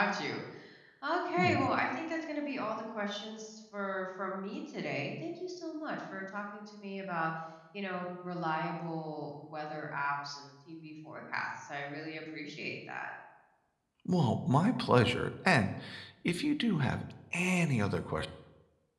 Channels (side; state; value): both; identical; correlation 1.00